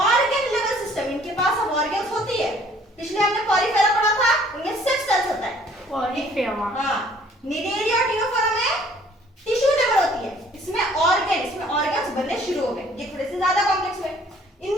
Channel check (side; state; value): both; normal; correlation 0.57